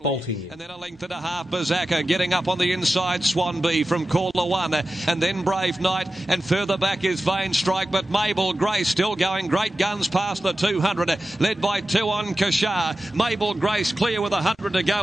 bolting in. And then a length and a half, Bazaka getting up on the inside, Swanby from Caller 1, and then Brave Knight, and further back is Vain Strike, but Mabel Grace still going great guns past the 200, led by 2 on Kashar. Mabel Grace clear with 100 to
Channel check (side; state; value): both; normal; correlation 0.93